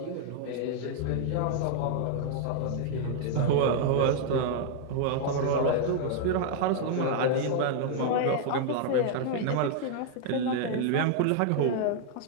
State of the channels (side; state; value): both; different; correlation 0.00